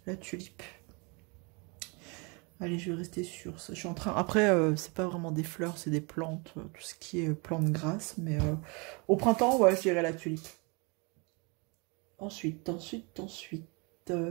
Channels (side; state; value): left; quieter; 30.6 dB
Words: La tulipe. Allez, je vais rester sur ça. Je suis en train... Après, c'est pas vraiment des fleurs, c'est des plantes. Tout ce qui est plantes grasses. Mais au printemps, ouais, je dirais la tulipe. Ensuite.